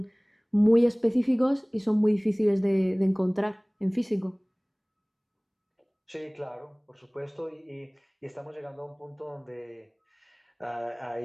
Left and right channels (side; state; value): both; identical; correlation 1.00